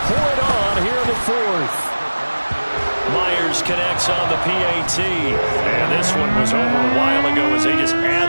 pour it on here in the 4th. Myers connects on the PAT. And this one was over a while ago as they just add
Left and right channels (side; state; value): both; inverted; correlation -1.00